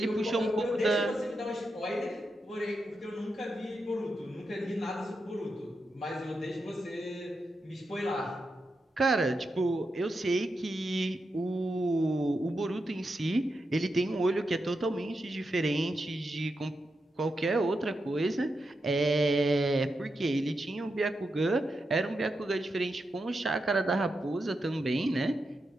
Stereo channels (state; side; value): normal; both; correlation 0.87